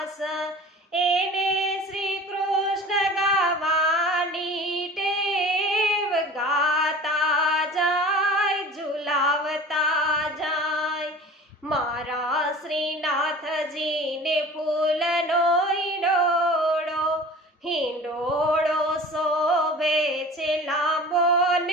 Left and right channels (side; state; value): both; normal; correlation 0.40